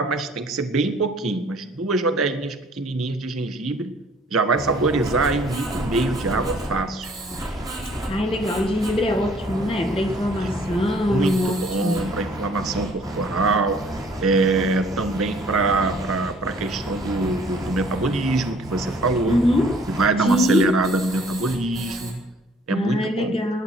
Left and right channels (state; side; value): normal; both; correlation 0.57